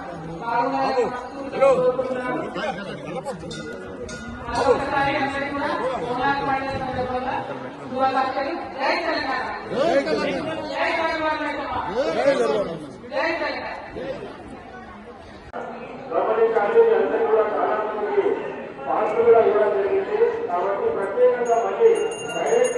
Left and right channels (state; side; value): identical; both; correlation 1.00